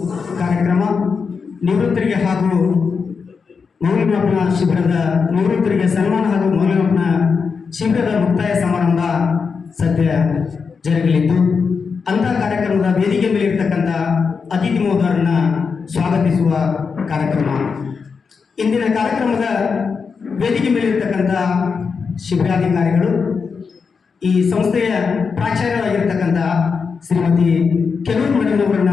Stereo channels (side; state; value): right; quieter; 5.4 dB